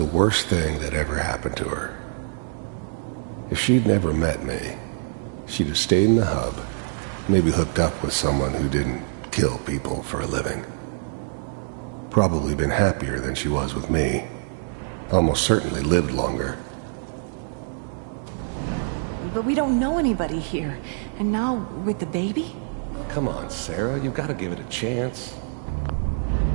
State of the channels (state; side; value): silent; left; 62 dB below the other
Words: worst thing that ever happened to her. If she'd never met me, she'd have stayed in the hub, maybe hooked up with someone who didn't kill people for a living. Probably been happier than she was with me. Almost certainly lived longer. But we don't know anybody here. And now, with the baby? Come on, Sarah, you've got to give it a chance.